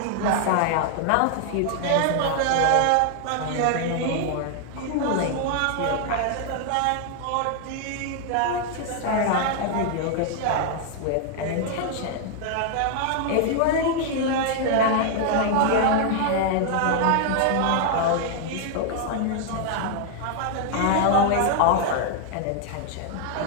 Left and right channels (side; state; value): both; different; correlation 0.00